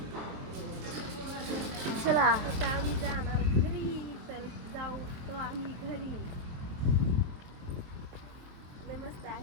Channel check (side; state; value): left; late; 23 ms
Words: चला आता आम्ही जाणार घरी. तर जाऊ तो आम्ही घरी. मस्त